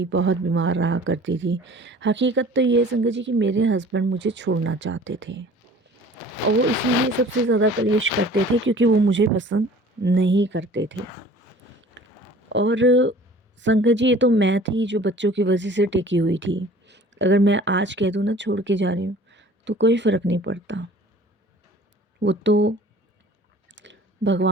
बहुत बीमार रहा करती थी। हकीकत तो ये है संगत जी कि मेरे हस्बैंड मुझे छोड़ना चाहते थे और वो इसीलिए सबसे ज़्यादा कलेश करते थे क्योंकि वो मुझे पसंद नहीं करते थे। और संगत जी ये तो मैं थी जो बच्चों की वजह से टिकी हुई थी। अगर मैं आज कह दूँ ना छोड़ के जा रही हूँ तो कोई फ़र्क नहीं पड़ता। वो तो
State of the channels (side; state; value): both; normal; correlation 0.48